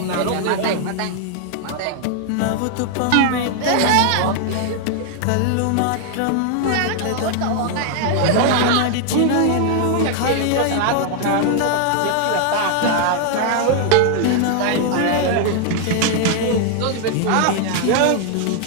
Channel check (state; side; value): different; both; correlation 0.00